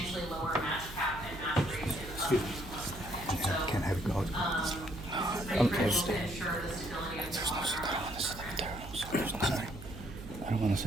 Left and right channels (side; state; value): right; noise; hum, 13 dB below the sound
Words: lower match cap and match rates in the so, Can't have it go. this is very critical to ensure the stability of the program. I don't want to